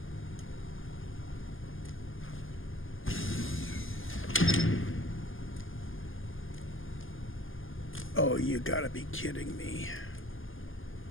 Oh, you gotta be kidding me.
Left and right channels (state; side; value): late; right; 0.59 ms